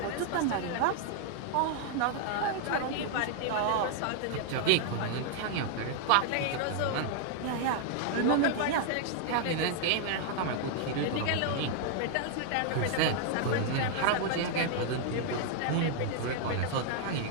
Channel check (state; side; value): different; both; correlation 0.00